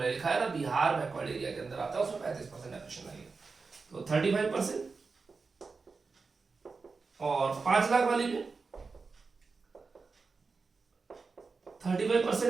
लिखा है ना, बिहार बैकवर्ड एरिया के अंदर आता है, उसमें 35% डेप्रिसिएशन लगेगा। तो 35%। और 5 लाख वाली में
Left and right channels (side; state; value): left; quieter; 4.5 dB